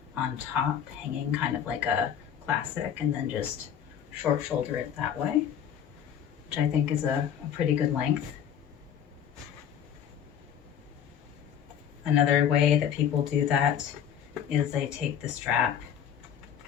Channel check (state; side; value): quieter; right; 8.9 dB